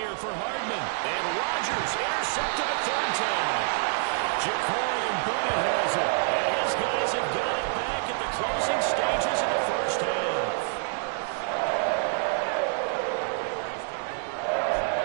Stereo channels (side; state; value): left; silent; 60 dB below the other